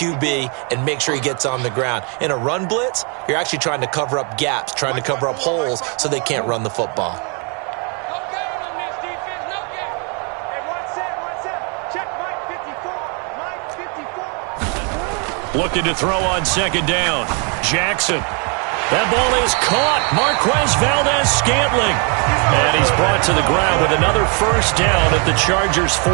and make sure he gets on the ground. In a run blitz, you're actually trying to cover up gaps, trying to cover up holes so they can't run the football. Looking to throw on 2nd down. Jackson. That ball is caught. Marquez Valdez-Scantling. And he's brought to the ground with another 1st down at the Chargers'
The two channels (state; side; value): quieter; left; 35.9 dB